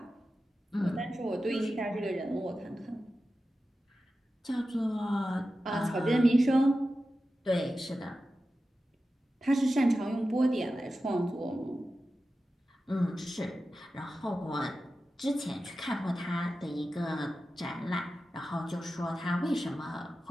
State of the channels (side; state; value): both; normal; correlation 0.93